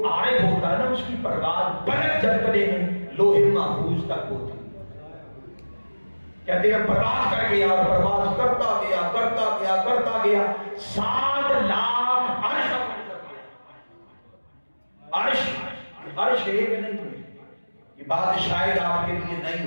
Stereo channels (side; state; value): both; inverted; correlation -1.00